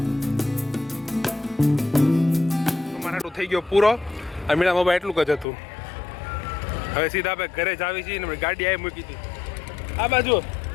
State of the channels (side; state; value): right; drops out; at 5.5 s